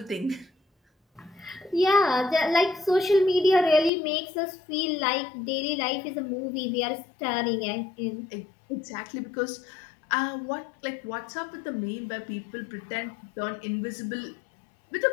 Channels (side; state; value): right; drops out; at 3.9 s